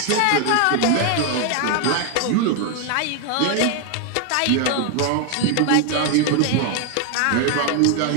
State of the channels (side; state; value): both; different; correlation 0.01